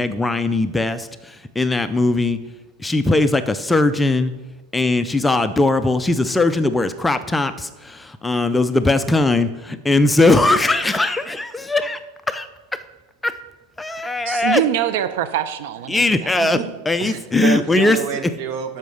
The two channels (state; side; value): normal; both; correlation 0.76